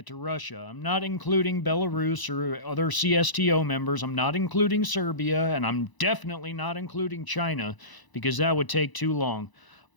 to Russia. I'm not including Belarus or other CSTO members. I'm not including Serbia, and I'm definitely not including China because that would take too long.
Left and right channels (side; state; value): right; late; 1.0 ms